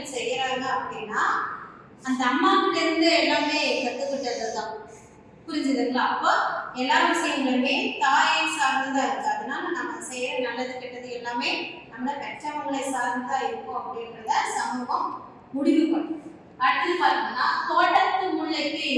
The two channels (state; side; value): identical; both; correlation 1.00